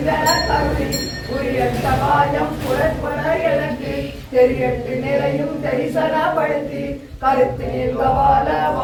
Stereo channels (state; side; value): identical; both; correlation 1.00